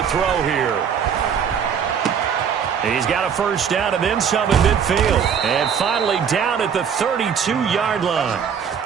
throw here. He's got a first down and then some in midfield. And finally down at the 32-yard line.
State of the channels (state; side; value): quieter; left; 7.4 dB